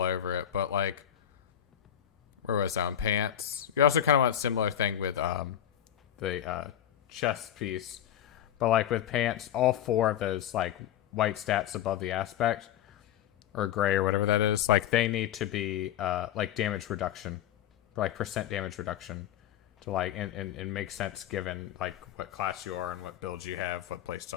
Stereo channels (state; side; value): quieter; right; 10.8 dB